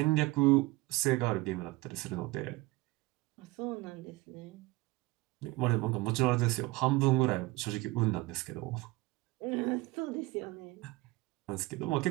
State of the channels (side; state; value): left; quieter; 21.1 dB